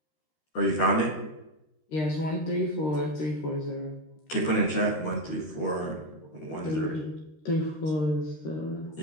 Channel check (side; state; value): right; late; 13 ms